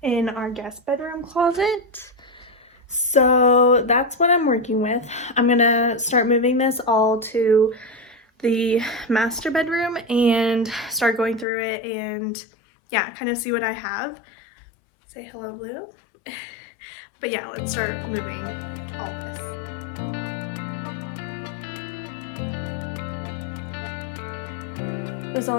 in our guest bedroom closet. So that's what I'm working with. I'm gonna start moving this all to the master bedroom and start going through it and yeah, kind of see what I have. Say hello, Blue. But yeah, let's start moving all this. There's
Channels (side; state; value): right; drops out; at 11.5 s